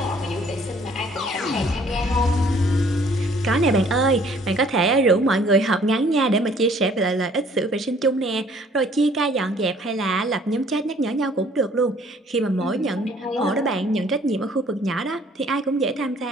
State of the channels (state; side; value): normal; both; correlation 0.58